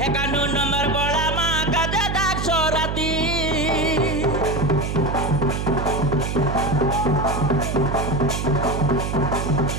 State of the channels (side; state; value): right; noise; hum, 2 dB below the sound